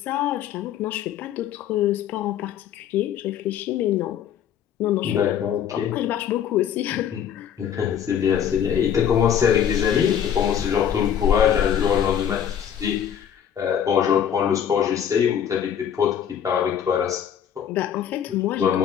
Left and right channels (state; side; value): quieter; right; 9.0 dB